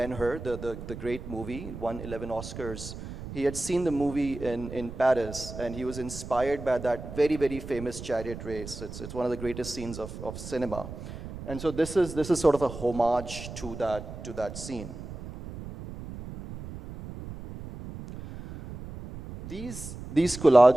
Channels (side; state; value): right; noise; rumble, 11 dB below the sound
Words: the great movie, won 11 Oscars. He had seen the movie in Paris, and he was inspired by that very, very famous chariot race. It's one of the greatest scenes of cinema. And so this is sort of a homage to that scene. These